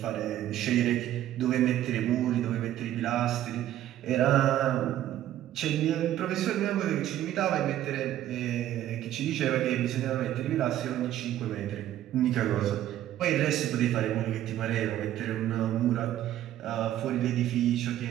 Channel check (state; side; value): quieter; left; 12.7 dB